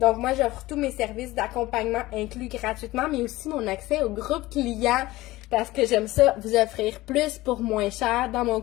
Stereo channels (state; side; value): quieter; right; 18.3 dB